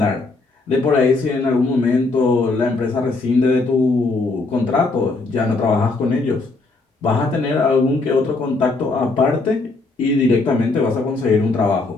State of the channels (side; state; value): right; quieter; 3.5 dB